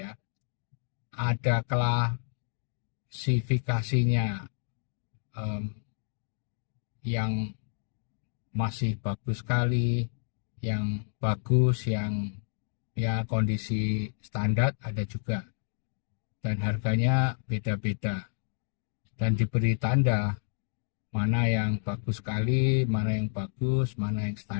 Ada klasifikasinya, yang masih bagus sekali, yang bagus, yang ya kondisi standar ada juga. Dan harganya beda-beda. Dan diberi tanda mana yang bagus sekali, mana yang bagus, mana yang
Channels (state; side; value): silent; right; digital silence